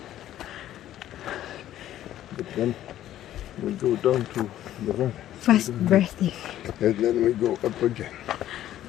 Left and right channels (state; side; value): quieter; right; 12.6 dB